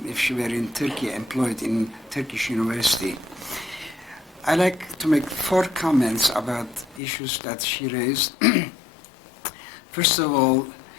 if she were in Turkey, employed in Turkish university. I like to make 4 comments about issues that she raised. First of all,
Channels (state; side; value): drops out; right; at 7.0 s